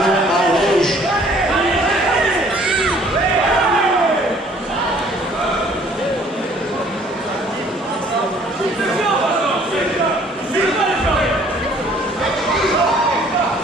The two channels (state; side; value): normal; both; correlation 0.57